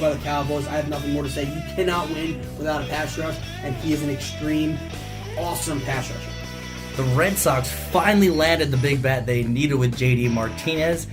the Cowboys. I have nothing more to say. You cannot win without a pass rush, and he is an extreme, awesome pass rusher. The Red Sox finally landed the big bat they needed with JD Martinez.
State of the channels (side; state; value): both; identical; correlation 1.00